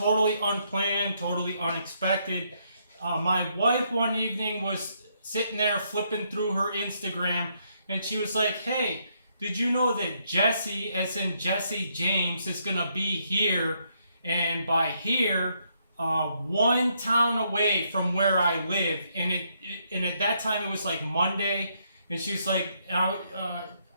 unplanned, totally unexpected. My wife one evening was sitting there flipping through her Instagram, and she was like, "Hey, did you know that Jesse, as in Jesse James, is gonna be here?" And by here, one town away from where I live, and at that time it was like Monday, and she was like,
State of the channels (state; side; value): inverted; both; correlation -0.74